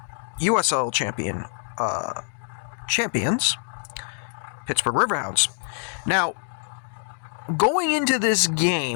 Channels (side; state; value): right; silent; digital silence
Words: USL champions, Pittsburgh Riverhounds. Now, going into this